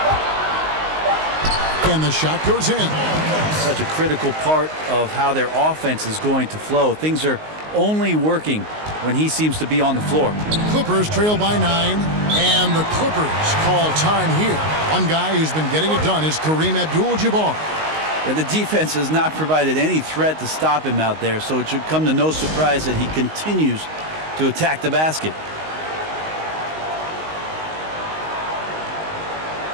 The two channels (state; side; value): late; left; 19 ms